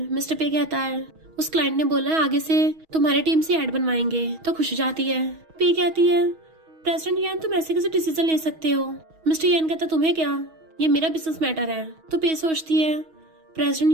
मिस्टर पे कहता है उस क्लाइंट ने बोला आगे से तुम्हारी टीम से एड बनवाएंगे, तो खुश हो जाती है। पे कहती है प्रेसिडेंट यान तुम ऐसे कैसे डिसीजन ले सकते हो। मिस्टर यान कहता तुम्हें क्या, ये मेरा बिजनेस मैटर है। तो पे सोचती है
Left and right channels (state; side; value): late; left; 6.3 ms